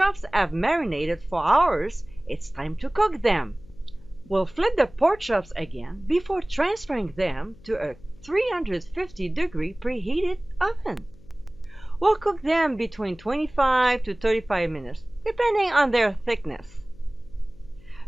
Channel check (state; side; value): noise; left; hum, 23 dB below the sound